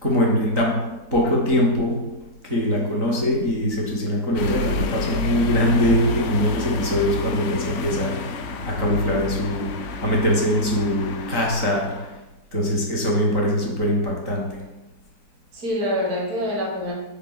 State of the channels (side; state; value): left; late; 3.9 ms